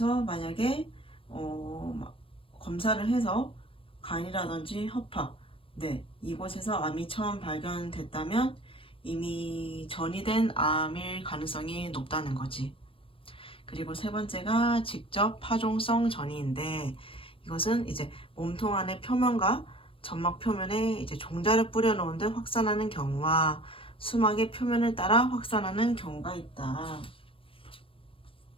만약에 검사를 해서 간이라든지 허파, 이곳에서 암이 처음 발견됐다면 이미 전이된 암일 가능성이 높다는 거지. 그리고 세 번째가 직접 파종성 전이인데, 이것은 이제 몸통 안의 표면과 점막 표면에 이제 종자를 뿌려놓은 듯 확산하는 경우와 수막의 표면을 따라 확산하는 경우가 있다.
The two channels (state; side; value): late; right; 0.26 ms